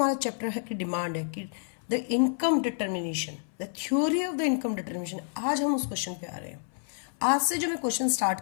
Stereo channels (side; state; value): right; silent; 59 dB below the other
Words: chapter है कि demand है कि the income determination, the theory of the income determination, आज हम उस क्वेश्चन पे आ रहे हैं. आज से जो मैं क्वेश्चन स्टार्ट